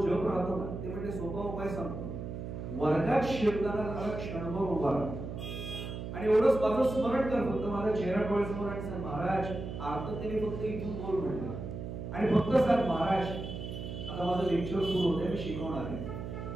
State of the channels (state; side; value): noise; right; hum, 7 dB below the sound